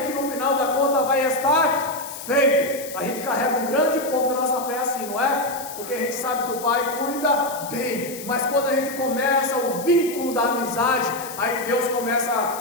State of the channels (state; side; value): noise; left; hiss, 12 dB below the sound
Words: que no final da conta vai estar feito. A gente carrega um grande ponto da nossa fé assim, não é? Porque a gente sabe que o Pai cuida bem, mas quando a gente começa o vínculo da amizade, aí Deus começa